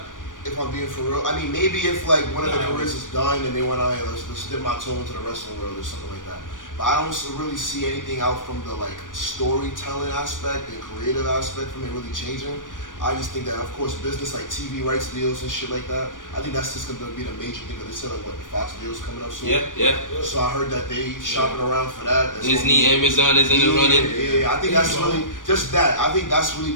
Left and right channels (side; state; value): right; late; 0.88 ms